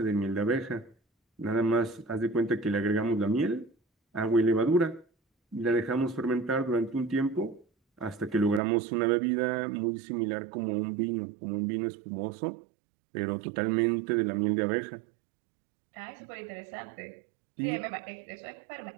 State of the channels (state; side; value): drops out; left; at 8.6 s